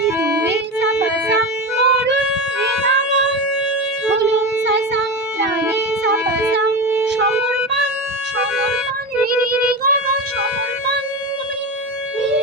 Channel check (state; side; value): normal; both; correlation 0.22